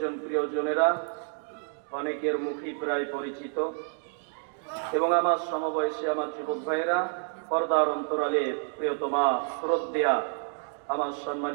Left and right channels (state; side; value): silent; left; 56 dB below the other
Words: জন প্রিয়জনেরা, অনেকের মুখই প্রায় পরিচিত, এবং আমার সমবয়সী আমার যুবক ভাইয়েরা, পর্দার অন্তরালে প্রিয়তমা শ্রদ্ধেয়া আমার